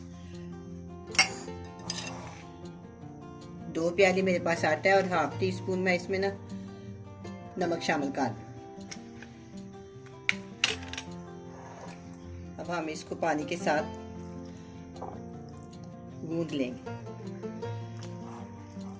दो प्याली मेरे पास आटा है और हाफ टी स्पून मैं इसमें ना नमक शामिल कर दूं। अब हम इसको पानी के साथ गूंद लेंगे।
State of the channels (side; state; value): both; identical; correlation 1.00